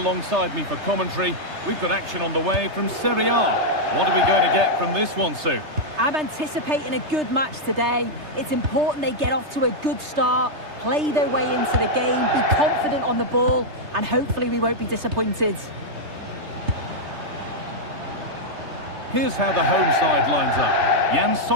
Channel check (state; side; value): late; left; 3.3 ms